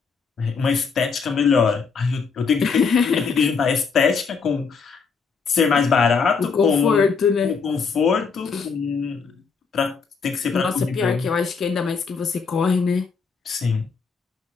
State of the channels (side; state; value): right; quieter; 5.4 dB